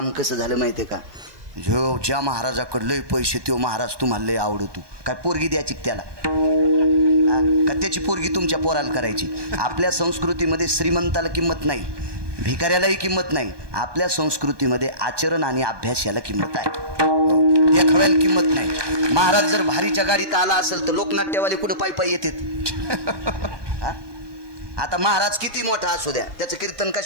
कसं झालं माहिती आहे का? जो ज्या महाराजाकडे लय पैसे तो महाराज तुम्हाला लय आवडतो. काय पोरगी द्यायची त्याला का त्याची पोरगी तुमच्या पोराला करायची? आपल्या संस्कृतीमध्ये श्रीमंताला किंमत नाही, भिकाऱ्यालाही किंमत नाही. आपल्या संस्कृतीमध्ये आचरण आणि अभ्यास याला किंमत आहे, देखाव्याला किंमत नाही. महाराज जर भारीच्या गाडीत आला असेल तर लोकनाट्यवाले कुठं पायी पायी येतात. आता महाराज किती मोठा असू द्या, त्याचं कीर्तन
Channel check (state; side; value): late; left; 1.2 ms